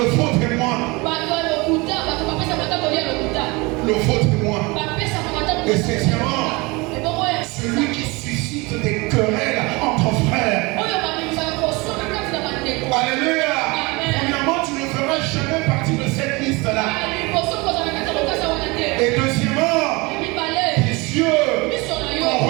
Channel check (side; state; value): left; quieter; 25.2 dB